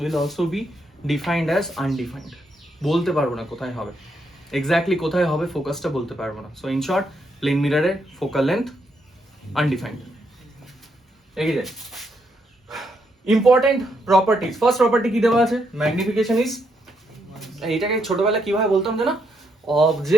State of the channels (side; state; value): both; normal; correlation 0.77